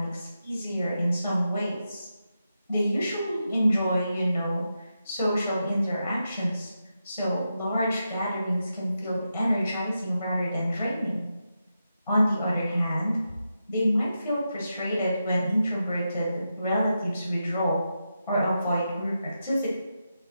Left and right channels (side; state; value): both; inverted; correlation -0.87